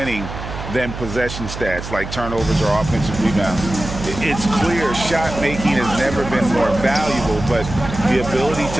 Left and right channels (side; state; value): right; noise; hum, 9 dB below the sound